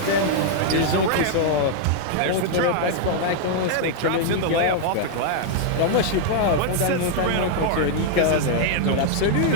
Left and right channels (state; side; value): different; both; correlation -0.01